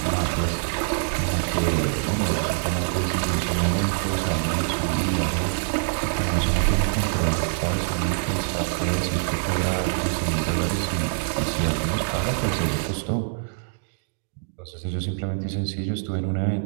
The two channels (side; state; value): left; silent; digital silence